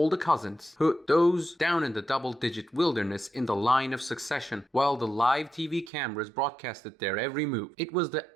the cousins, those down in the double-digit wilderness in the line of succession, while the live TV cameras broadcasted their every move. It was the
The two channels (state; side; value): drops out; left; at 5.9 s